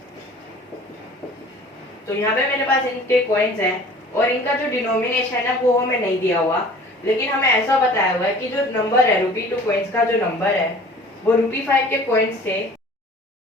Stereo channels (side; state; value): both; normal; correlation 0.47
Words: तो यहाँ पे मेरे पास इनके कॉइन्स हैं और इनका जो डिनोमिनेशन है वो हमें नहीं दिया हुआ, लेकिन हमें ऐसा बताया हुआ है कि जो नंबर है ₹2 कॉइन्स का जो नंबर है वो ₹5 के कॉइन्स से